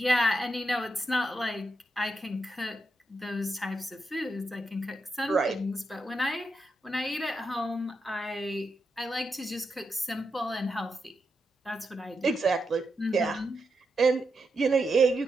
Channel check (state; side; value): normal; both; correlation 0.85